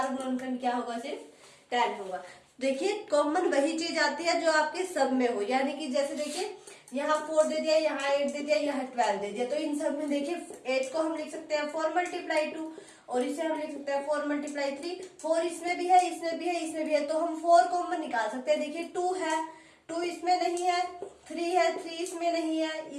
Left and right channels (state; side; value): identical; both; correlation 1.00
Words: गुणनखंड क्या होगा सिर्फ 10 होगा। देखिए कॉमन वही चीज आती है जो आपके सब में हो, यानी कि जैसे देखिए यहाँ 4 दे दिया, यहाँ 8 दे दिया, यहाँ 12 दे दिया, तो इन सब में देखिए 8 को हम लिख सकते हैं 4 × 2 और इसे हम लिख सकते हैं 4 × 3। 4 इसमें भी है, इसमें भी है, इसमें भी है, तो हम 4 कॉमन निकाल सकते हैं। देखिए 2 है, 2 इसमें नहीं है, 3 है, 3 इसमें नहीं है,